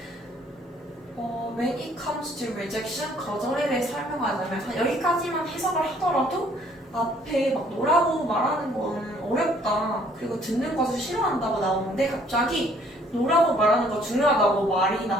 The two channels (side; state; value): both; normal; correlation 0.61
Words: When it comes to rejection, 거절에 대해 설명하자면 여기까지만 해석을 하더라도 앞에 no라고 말하는 거는 어렵다, 그리고 듣는 것을 싫어한다고 나오는데 갑자기 no라고 말하는 거 중요하다고 말이